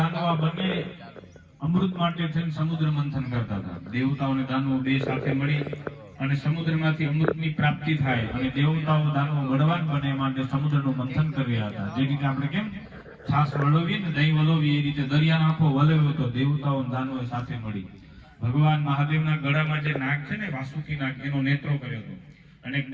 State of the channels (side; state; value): both; identical; correlation 1.00